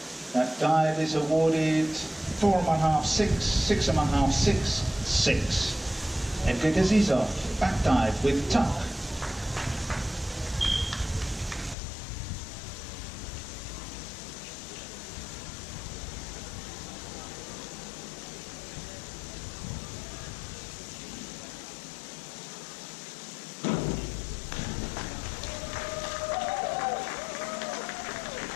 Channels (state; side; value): drops out; right; at 11.8 s